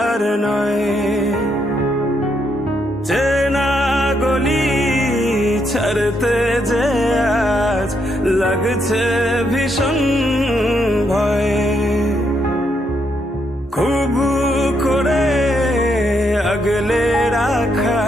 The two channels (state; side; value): normal; both; correlation 0.77